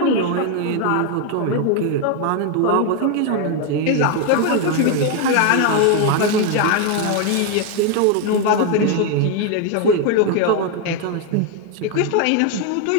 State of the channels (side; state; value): both; different; correlation 0.01